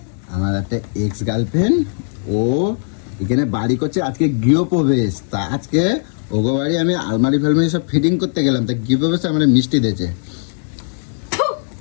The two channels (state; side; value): silent; right; 67 dB below the other